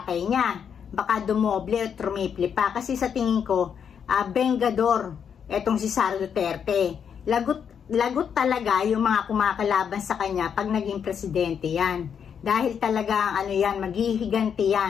niya. Baka dumoble o trumiple pa. Kasi sa tingin ko, Bengador, etong si Sara Duterte. Lagot talaga yung mga kumakalaban sa kanya pag naging presidente yan. Dahil talaga, maghihiganti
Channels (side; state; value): right; quieter; 7.5 dB